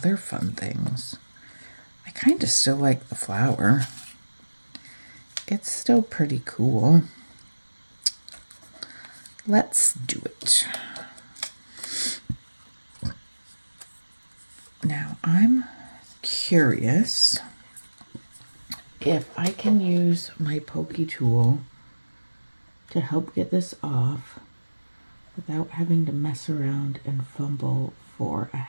fun things? I kind of still like the flower. It's still pretty cool. Let's do it. Now I'm curious if I can use my pokey tool to help get this off without having to mess around and fumble for a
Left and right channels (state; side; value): inverted; both; correlation -1.00